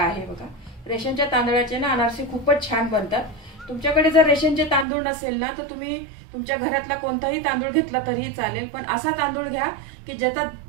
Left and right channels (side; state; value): left; drops out; at 4.9 s